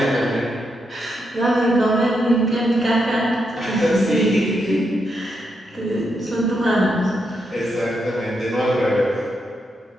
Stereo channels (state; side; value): normal; both; correlation 0.82